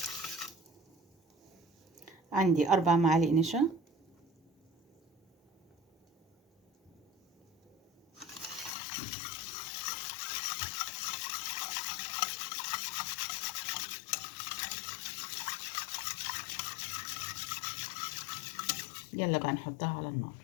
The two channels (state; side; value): drops out; right; at 8.7 s